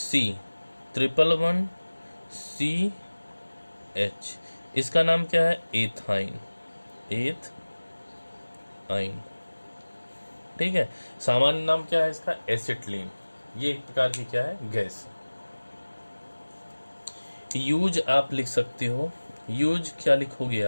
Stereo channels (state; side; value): inverted; both; correlation -1.00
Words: इसका नाम क्या है, एथाइन, एथाइन। ठीक है, सामान्य नाम क्या है इसका, एसिटिलीन। ये एक प्रकार की क्या है, गैस। यूज आप लिख सकते हो, यूज क्या लिखोगे